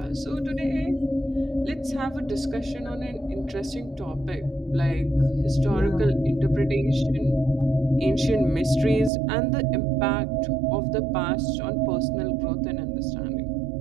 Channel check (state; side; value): drops out; left; at 9.1 s